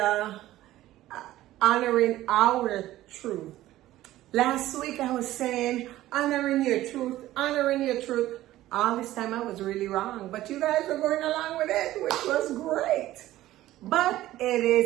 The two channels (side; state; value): left; quieter; 15.1 dB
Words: honoring our truth. Last week I was saying honoring your truth. All this time I was really wrong, but you guys were going along with it, which was great. But it